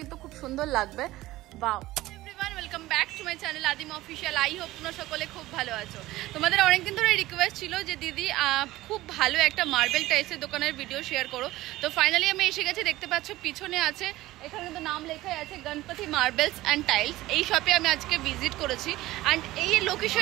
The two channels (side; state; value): left; quieter; 17.2 dB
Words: খুব সুন্দর লাগবে। বাও, welcome back to my channel আদিম অফিসিয়াল। আই হোপ তোমরা সকলে খুব ভালো আছো। তোমাদের অনেকদিন ধরে রিকোয়েস্ট ছিল যে দিদি খুব ভালো একটা মার্বেল টাইলসের দোকানের ভিডিও শেয়ার করো। তো ফাইনালি আমি এসে গেছি। দেখতে পাচ্ছ পিছনে আছে, এখানে কিন্তু নাম লেখাই আছে গণপতি মার্বেলস অ্যান্ড টাইলস। এই শপে আমি আজকে ভিজিট করেছি। অ্যান্ড এই